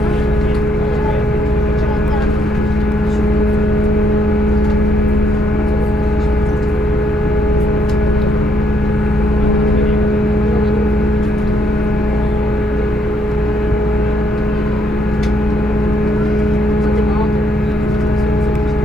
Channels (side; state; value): both; normal; correlation 0.72